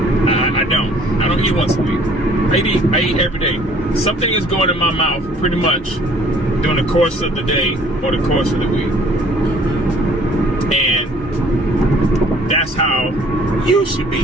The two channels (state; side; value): normal; both; correlation 0.55